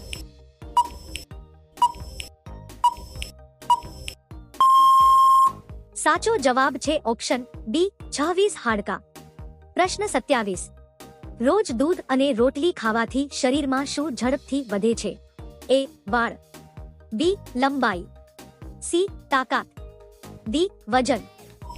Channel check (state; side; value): identical; both; correlation 1.00